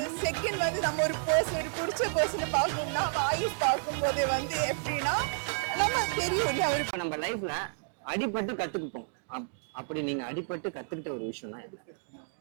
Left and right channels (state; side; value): silent; left; digital silence